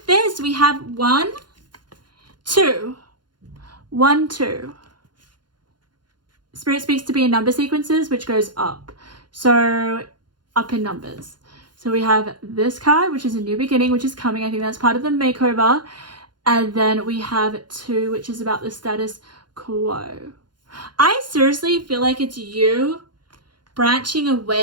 this. We have 1, 2. 1, 2. Spirit speaks to be in number sequences, which goes up. So up in numbers. So we have this card, which is a new beginning, which is coming. I think that's part of the makeover. And then we have 2, which is about the status quo. I seriously feel like it's you branching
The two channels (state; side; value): late; left; 0.71 ms